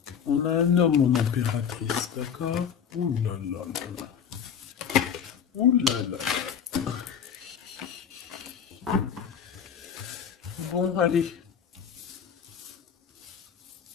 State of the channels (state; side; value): quieter; right; 7.7 dB